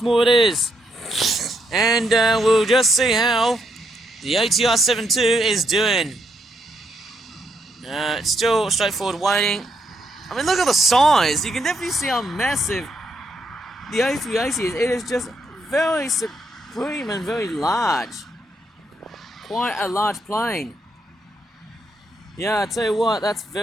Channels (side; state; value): both; normal; correlation 0.77